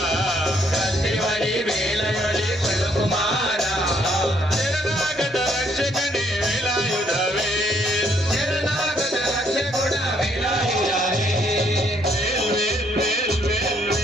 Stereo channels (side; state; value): both; normal; correlation 0.69